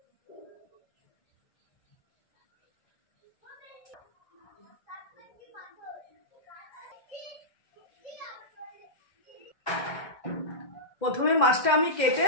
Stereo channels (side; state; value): right; late; 2.1 ms